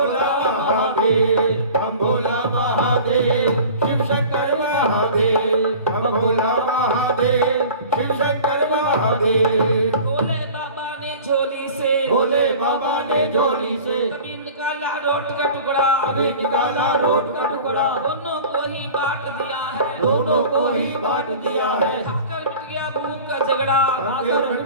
महादेव हम भोला महादेव शिव शंकर महादेव हम भोला महादेव शिव शंकर महादेव भोले बाबा ने झोली से भोले बाबा ने झोली से कभी निकाला रोट का टुकड़ा अभी निकाला रोट का टुकड़ा दोनों को ही बांट दिया है दोनों को ही बांट दिया है खाकर मिट गया भूख का झगड़ा खाकर मिट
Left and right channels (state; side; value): inverted; both; correlation -0.41